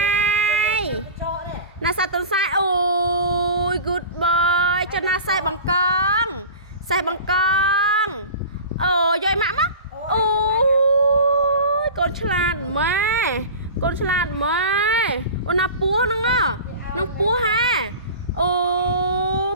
ណាសាតុនសាយអូយ good boy ចុះណាសេះបង្កងអូយម៉ាក់មកអូយកូនឆ្លាតម៉ែអូនណាពស់ហ្នឹងនឹងពស់ហាអូ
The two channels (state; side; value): inverted; both; correlation -0.36